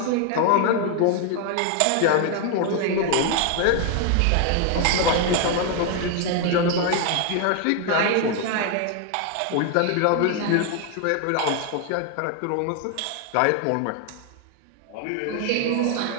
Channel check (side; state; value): both; different; correlation 0.01